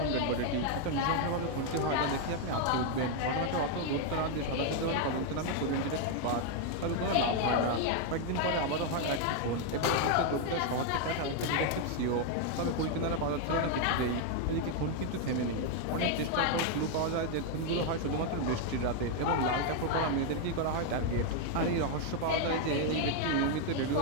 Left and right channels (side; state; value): both; different; correlation 0.01